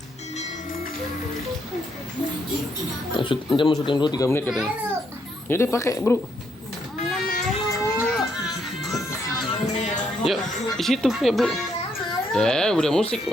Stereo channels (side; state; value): both; normal; correlation 0.75